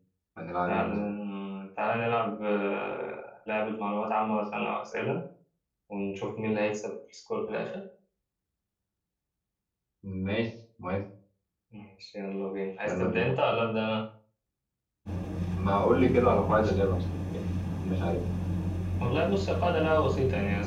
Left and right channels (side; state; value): both; identical; correlation 1.00